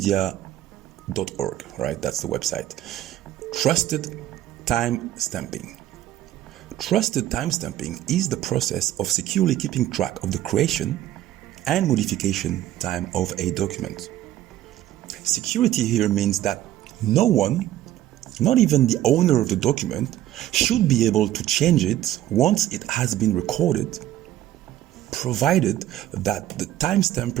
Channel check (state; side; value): quieter; left; 13.3 dB